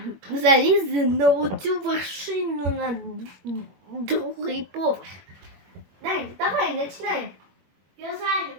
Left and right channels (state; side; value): late; left; 21 ms